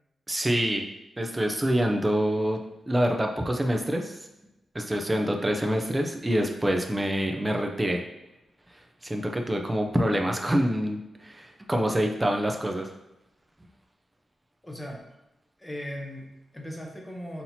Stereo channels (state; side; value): normal; both; correlation 0.94